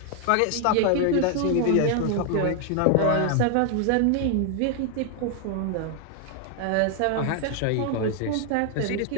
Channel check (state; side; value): different; both; correlation 0.00